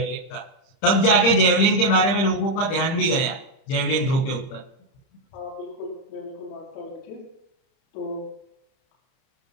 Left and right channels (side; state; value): right; late; 30 ms